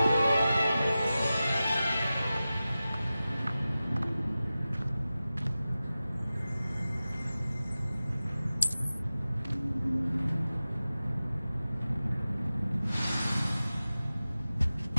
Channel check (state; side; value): inverted; both; correlation -0.95